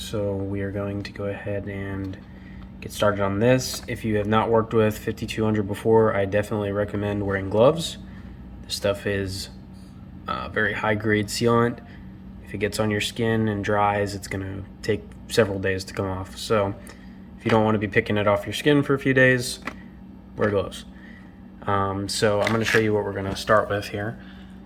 we are going to go ahead and get started on this. If you have not worked with 5200 before, I definitely recommend wearing gloves. This stuff is very high grade sealant. If it gets on your skin and dries, it's going to take several days to come off. So if you don't want to be picking it off your skin for a few days, wear gloves. So I'm going to show you what we're going to start with here.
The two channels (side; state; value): both; identical; correlation 1.00